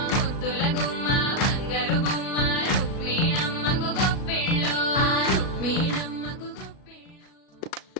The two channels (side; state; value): right; late; 37 ms